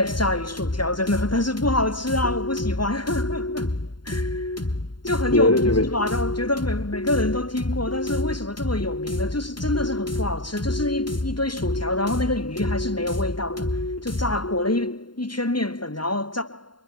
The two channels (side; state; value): right; late; 0.72 ms